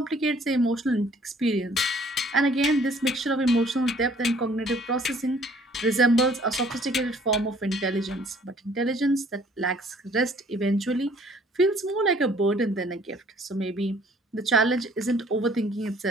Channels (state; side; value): normal; both; correlation 0.58